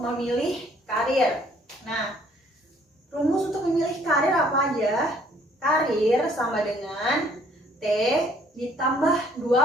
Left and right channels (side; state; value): both; normal; correlation 0.61